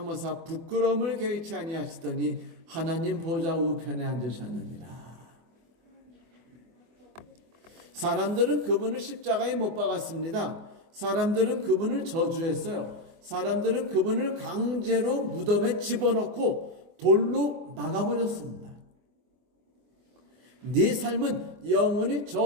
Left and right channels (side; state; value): left; late; 24 ms